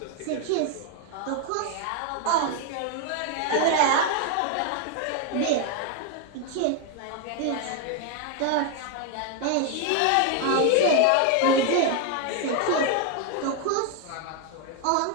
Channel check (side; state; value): both; different; correlation 0.01